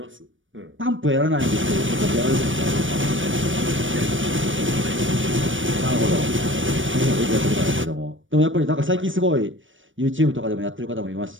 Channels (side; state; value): left; late; 0.56 ms